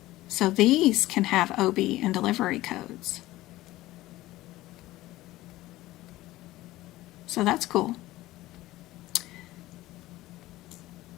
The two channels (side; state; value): right; quieter; 17.0 dB